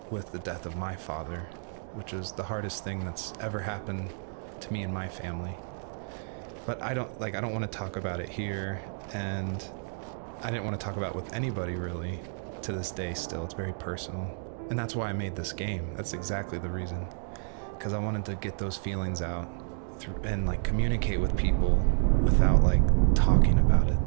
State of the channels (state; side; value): silent; left; digital silence